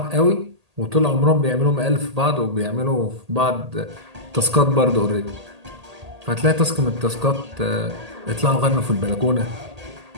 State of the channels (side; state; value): left; late; 1.8 ms